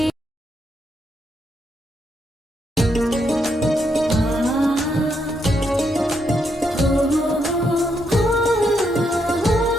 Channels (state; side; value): normal; both; correlation 0.79